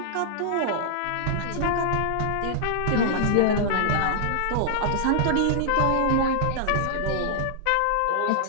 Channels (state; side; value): different; both; correlation -0.01